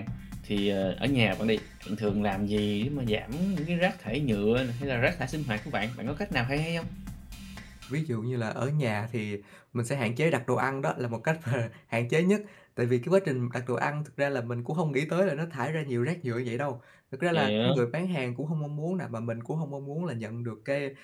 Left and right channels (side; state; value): both; identical; correlation 1.00